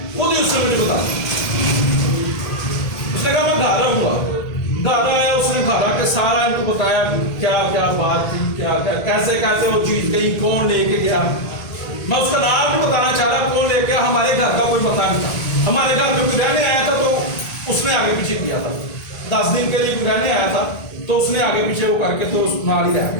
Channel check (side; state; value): right; late; 1.8 ms